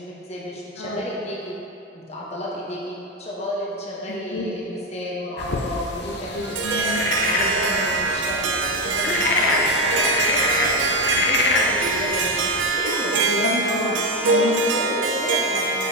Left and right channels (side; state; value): both; normal; correlation 0.11